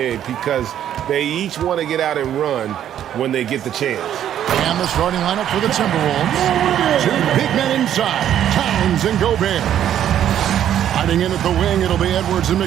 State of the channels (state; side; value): quieter; left; 10.6 dB